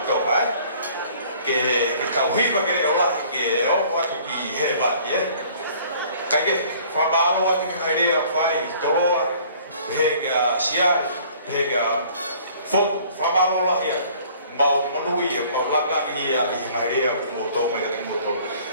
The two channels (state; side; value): inverted; both; correlation -0.54